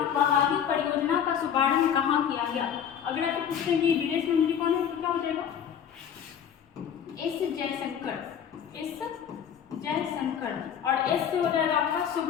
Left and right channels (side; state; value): right; quieter; 8.5 dB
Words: बहाली परियोजना का शुभारंभ कहाँ किया गया। अगर आप पूछते हैं कि विदेश मंत्री कौन है, तो क्या हो जाएगा, एस जयशंकर, एस जयशंकर, और एस से हो जाएगा आपका